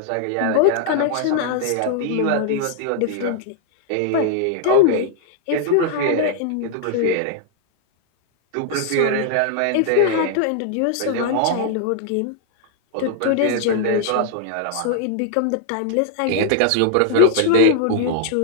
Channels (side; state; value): both; different; correlation 0.00